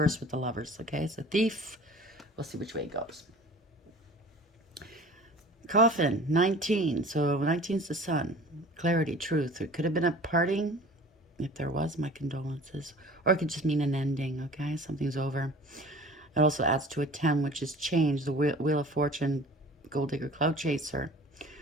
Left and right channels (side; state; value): both; normal; correlation 0.44